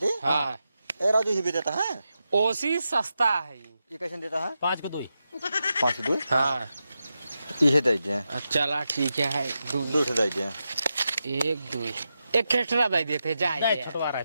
हाँ ए राजू ही भी देता है। ओसी सस्ता है। ये कैसे देता है? 5 को 2। 5 2 हाँ ये दीजिए। चला ठीक है। 2 दीजिए। 1 2 एक एक्स्ट्रा दे देते जाए। छुटवा रहा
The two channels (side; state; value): both; inverted; correlation -0.89